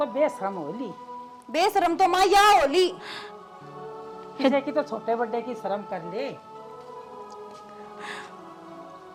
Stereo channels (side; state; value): both; identical; correlation 1.00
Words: बेशरम होली। बेशरम तो माँ या होली, किसी की तो छोटे बड़े की शर्म कर ले।